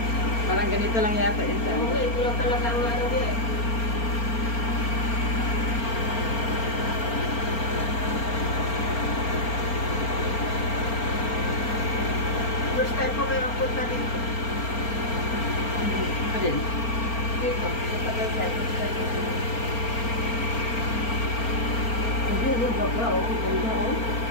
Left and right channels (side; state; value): right; late; 4.3 ms